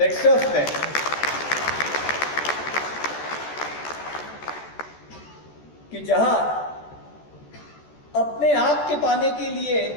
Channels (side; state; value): right; late; 14 ms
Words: में कि जहां अपने आप के पाने के लिए